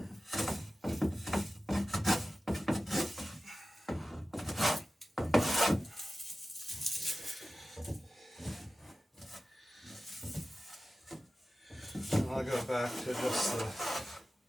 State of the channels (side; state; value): both; normal; correlation 0.94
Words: And I'll go back to just the